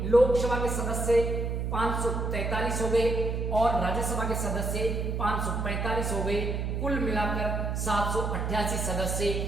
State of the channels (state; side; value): noise; right; hum, 1 dB below the sound